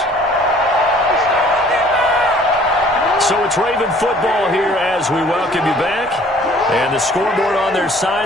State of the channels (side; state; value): both; normal; correlation 0.54